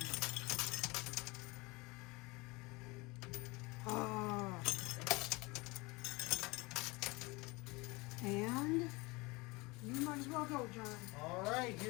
Ah. And you might as well go, John. All right,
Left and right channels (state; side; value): quieter; right; 24.7 dB